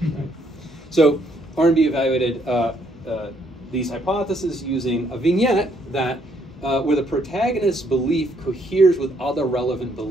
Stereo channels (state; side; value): normal; both; correlation 0.70